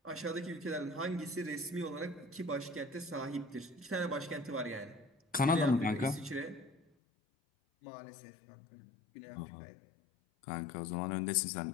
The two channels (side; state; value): right; drops out; at 6.8 s